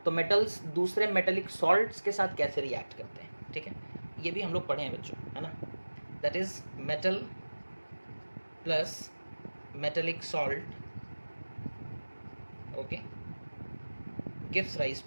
तो मेटल्स दूसरे मेटेलिक सॉल्ट्स के साथ कैसे रिएक्ट करते हैं, ठीक है, ये भी हम लोग पढ़े हैं बच्चों, है ना। That is metal plus metallic salt, okay, gives rise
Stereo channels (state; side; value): inverted; both; correlation -1.00